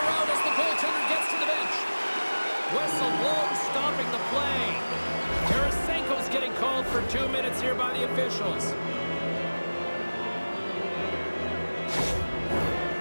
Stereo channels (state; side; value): inverted; both; correlation -1.00